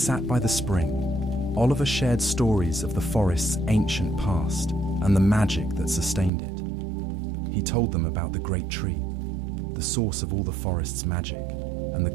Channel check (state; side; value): drops out; left; at 6.3 s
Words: by the spring, Oliver shared stories of the forest's ancient past and the magic that sustained it. He told them about the great tree, the source of all the forest's magic, and the